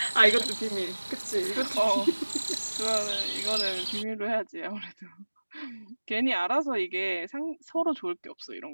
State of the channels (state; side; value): inverted; both; correlation -1.00